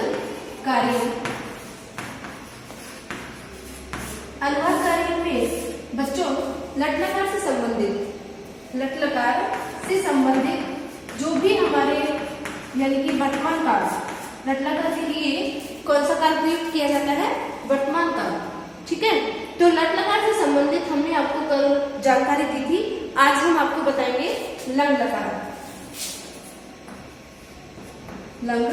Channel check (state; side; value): identical; both; correlation 1.00